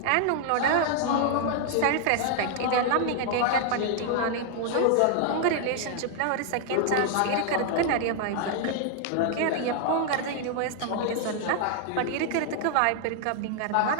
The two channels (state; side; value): different; both; correlation 0.00